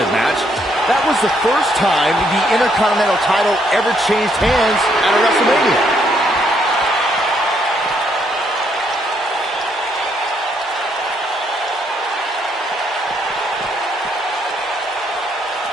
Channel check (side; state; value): both; normal; correlation 0.72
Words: match. That was the first time the Intercontinental title ever changed hands at a WrestleMania.